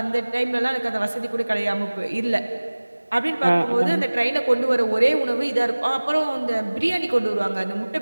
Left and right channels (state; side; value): inverted; both; correlation -1.00